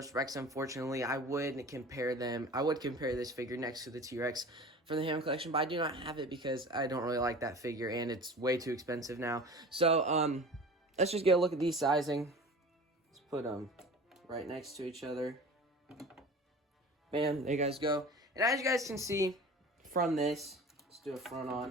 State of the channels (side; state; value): both; normal; correlation 0.39